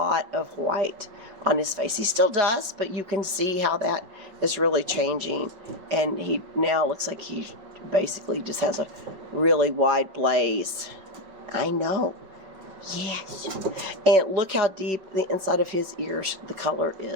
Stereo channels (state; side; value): late; left; 5.3 ms